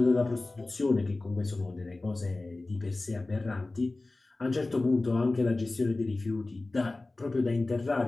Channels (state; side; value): quieter; right; 3.1 dB